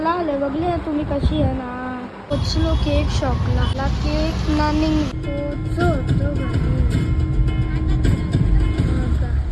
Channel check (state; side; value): identical; both; correlation 1.00